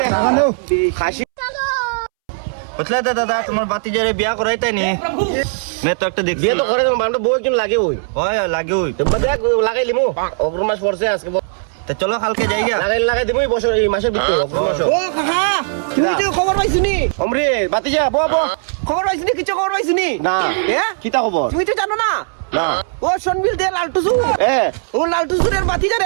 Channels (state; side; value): silent; left; 68 dB below the other